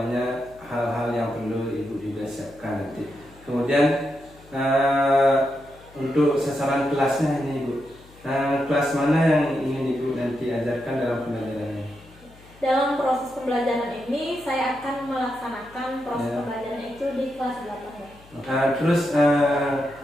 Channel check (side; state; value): left; noise; hum, 25 dB below the sound